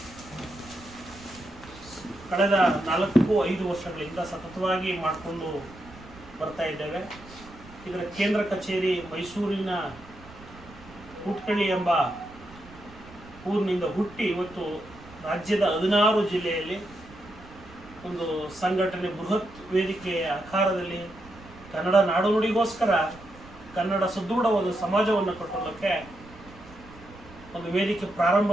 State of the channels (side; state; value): right; noise; rumble, 20 dB below the sound